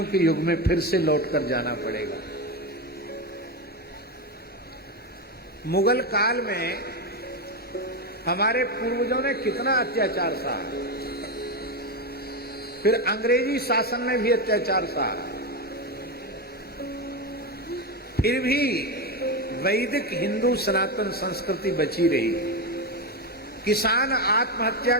के युग में फिर से लौटकर जाना पड़ेगा। मुगल काल में हमारे पूर्वजों ने कितना अत्याचार सहा, फिर अंग्रेजी शासन में भी अत्याचार सहा, फिर भी वैदिक हिंदू सनातन संस्कृति बची रही। किसान आत्महत्या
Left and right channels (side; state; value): both; normal; correlation 0.13